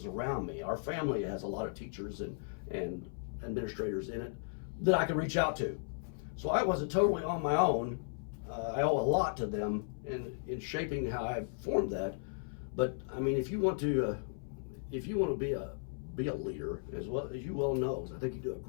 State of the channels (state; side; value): silent; right; 54 dB below the other